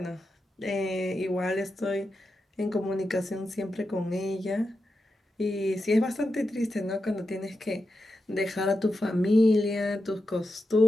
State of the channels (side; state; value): both; normal; correlation 0.89